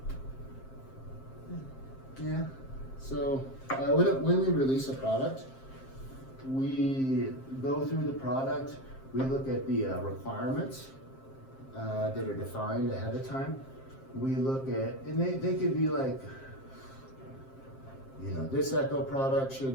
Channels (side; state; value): right; late; 7.5 ms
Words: Yeah. So when we release a product, we go through the product, we look at the requirements that are defined ahead of time. we look at, and they could be like, you know, this Echo product